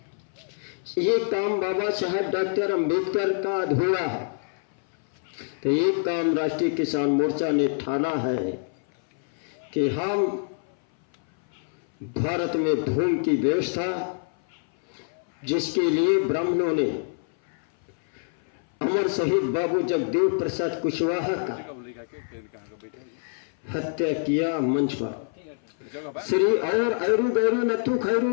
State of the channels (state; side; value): silent; right; 58 dB below the other